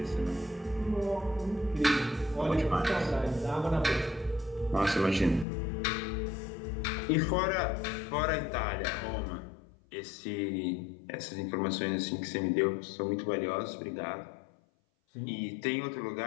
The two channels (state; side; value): drops out; right; at 5.5 s